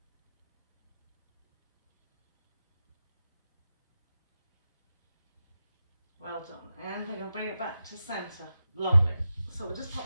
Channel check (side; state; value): both; inverted; correlation -0.91